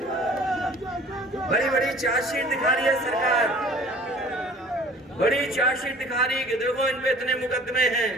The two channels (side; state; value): both; normal; correlation 0.49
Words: बड़ी बड़ी चार्जशीट दिखा रही है सरकार, बड़ी चार्जशीट दिखा रही है कि देखो इन पे इतने मुकदमे हैं।